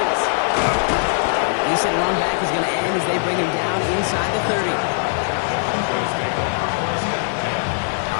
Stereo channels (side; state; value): right; silent; 56 dB below the other